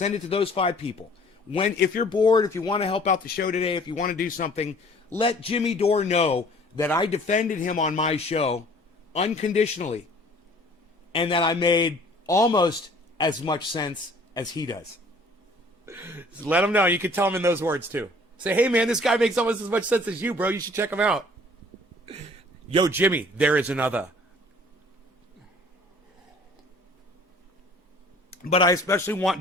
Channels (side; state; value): both; normal; correlation 0.53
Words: it to those 5 people. If you're bored, if you want to help out the show today, if you want to do something, let Jimmy Dore know that I defended him on my show unconditionally, and that I made almost as much sense as he does. Just let him know. You can tell him in those words too. Say, hey man, this guy makes almost as much sense as you, bro. You should check him out. Yo, Jimmy, there is another. But I especially want